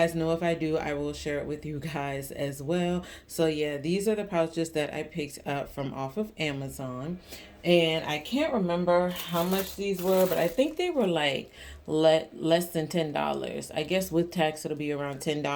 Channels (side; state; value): both; identical; correlation 1.00